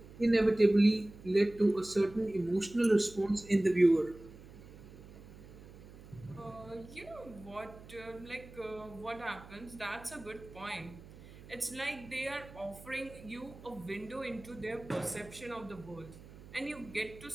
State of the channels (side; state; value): right; noise; hum, 18 dB below the sound